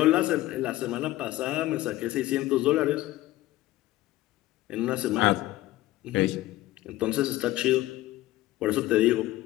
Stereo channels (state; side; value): quieter; right; 16.6 dB